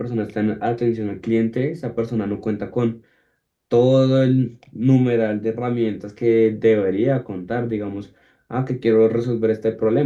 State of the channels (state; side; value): identical; both; correlation 1.00